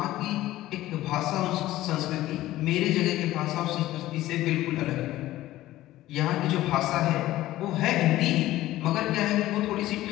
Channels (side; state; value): right; quieter; 15.5 dB